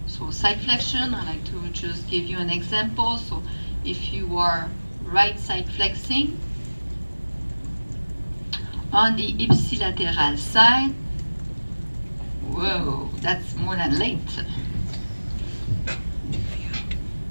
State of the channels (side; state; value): both; inverted; correlation -1.00